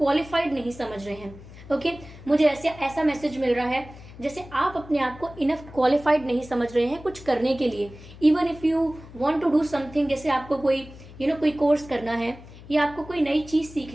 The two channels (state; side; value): noise; left; hum, 18 dB below the sound